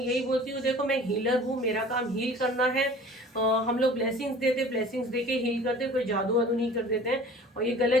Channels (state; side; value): normal; both; correlation 0.45